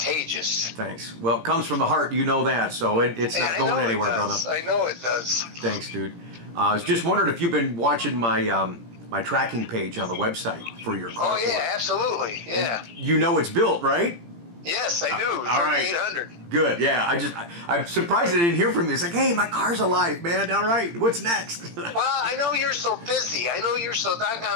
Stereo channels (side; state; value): left; late; 17 ms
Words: Thanks. Well, it comes from the heart. You know that, so it's not going anywhere, brother. I know it does. Thanks, dude. I was just wondering if you've been watching my my tracking page on the website for your car. Oh yeah, absolutely. Yeah. And you know it's built, right? Yes, I do. All right. 3800. Good. Yeah. I'm surprised I didn't hear from you. It's like, hey, my car's alive, man. All right. What's next? Well, I know you're so busy. I know you're so